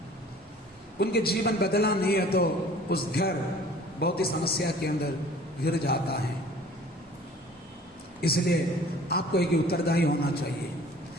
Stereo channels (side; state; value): both; normal; correlation 0.49